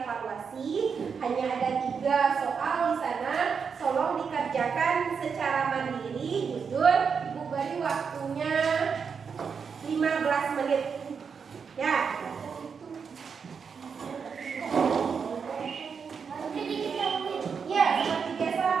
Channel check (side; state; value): left; quieter; 6.1 dB